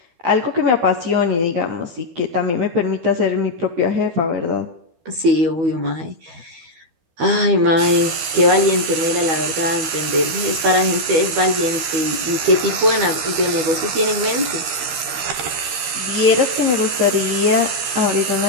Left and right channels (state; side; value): late; left; 13 ms